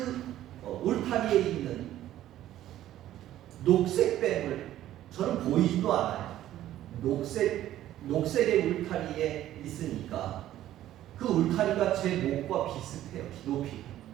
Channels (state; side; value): quieter; left; 13.1 dB